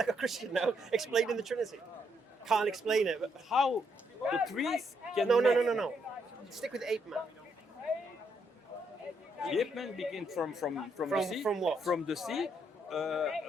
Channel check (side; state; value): both; normal; correlation 0.75